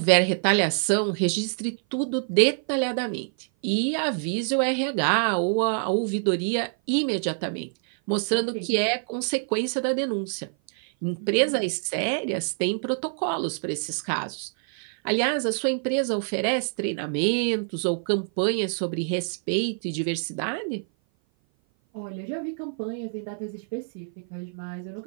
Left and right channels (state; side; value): silent; left; 56 dB below the other